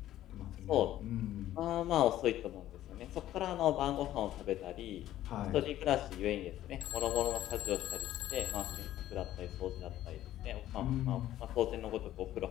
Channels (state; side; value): quieter; right; 13.4 dB